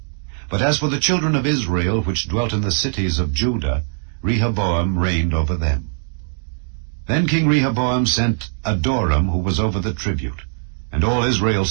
But as for the children of Israel which dwelt in the cities of Judah, Rehoboam reigned over them. Then King Rehoboam sent Adoram, who was over the tribute, and all Israel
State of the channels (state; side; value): silent; left; 66 dB below the other